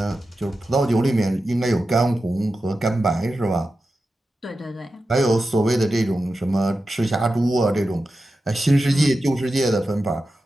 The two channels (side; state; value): both; normal; correlation 0.92